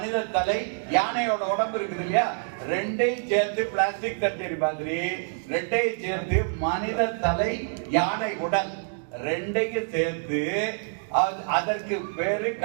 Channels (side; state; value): left; silent; 56 dB below the other